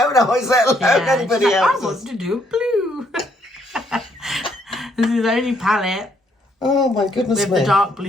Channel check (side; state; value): both; normal; correlation 0.70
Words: eyes, let alone anybody else's. I want to do blue. This is the only palette Oh my goodness with me. the dark